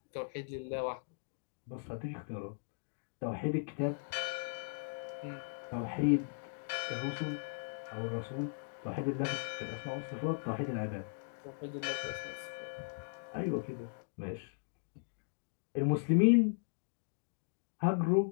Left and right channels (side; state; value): right; silent; digital silence